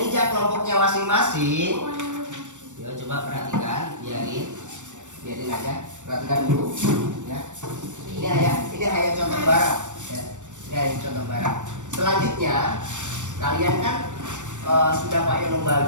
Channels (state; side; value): late; left; 0.85 ms